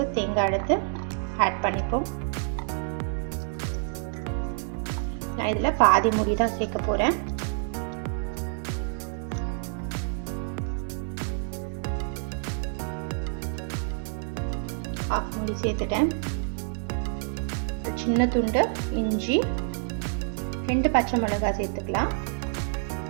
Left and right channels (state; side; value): silent; left; 60 dB below the other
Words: தேங்காய் எடுத்து ஆட் பண்ணிப்போம். நான் இதில் பாதி மூடி தான் சேர்க்க போகிறேன். ஆஃப் மூடி சேர்த்துட்டேன். சின்ன துண்டு இஞ்சி, 2 பச்சை மிளகாய் சேர்த்துக்கலாம்.